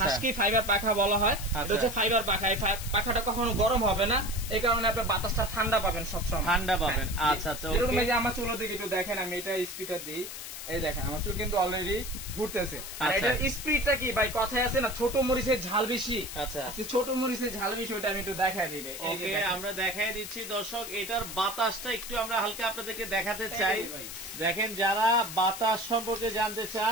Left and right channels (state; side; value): noise; left; hiss, 9 dB below the sound